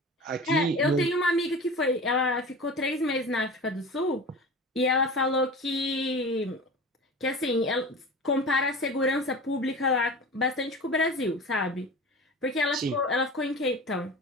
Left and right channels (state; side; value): normal; both; correlation 0.34